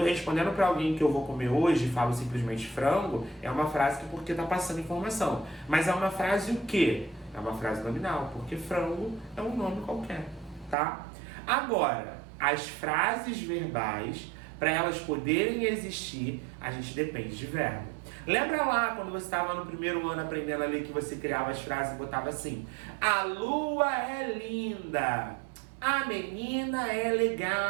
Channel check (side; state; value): left; drops out; at 10.8 s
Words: respondendo para alguém que eu vou comer hoje e falo simplesmente frango, é uma frase que porque está passando informação. Mas é uma frase o quê? É uma frase nominal, porque frango é um nome qualquer. Tá? Agora, as frases verbais, para elas poderem existir, a gente depende de verbo. Lembra lá quando você estava no primeiro ano aprendendo a ler que você criava as frases e botava assim: a lua é linda, a menina é